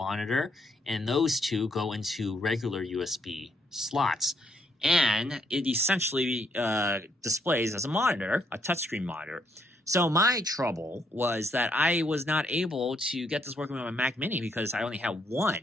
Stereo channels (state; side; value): normal; both; correlation 0.73